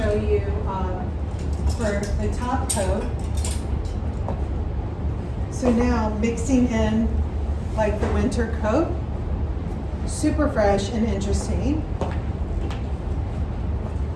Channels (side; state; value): both; identical; correlation 1.00